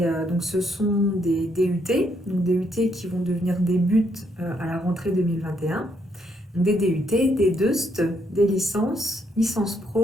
donc ce sont des DUT, donc DUT qui vont devenir des buts à la rentrée 2021, des DUT, des DEUST, des licences, licence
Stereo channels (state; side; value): normal; both; correlation 0.74